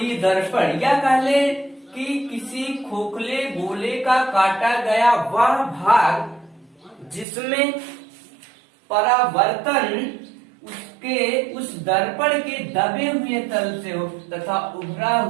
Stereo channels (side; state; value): left; drops out; at 7.2 s